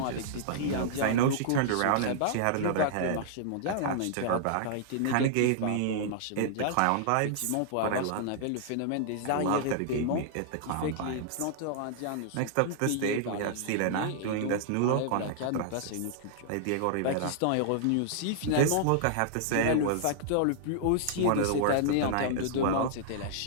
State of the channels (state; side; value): different; both; correlation -0.01